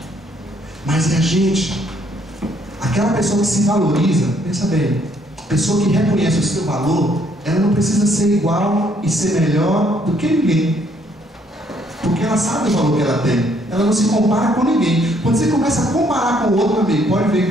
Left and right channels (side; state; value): both; normal; correlation 0.67